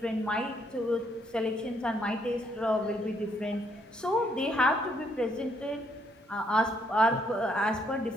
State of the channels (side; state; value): both; normal; correlation 0.71